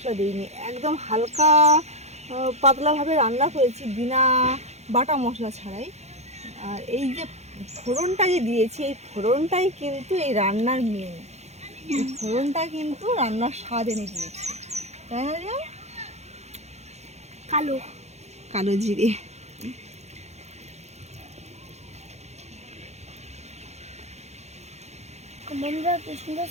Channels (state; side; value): late; left; 0.32 ms